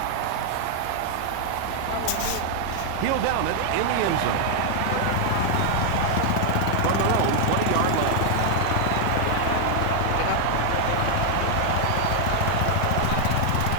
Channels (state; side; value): different; both; correlation 0.00